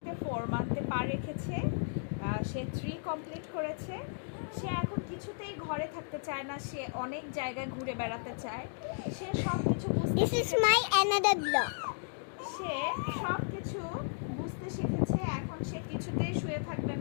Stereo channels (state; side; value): silent; right; digital silence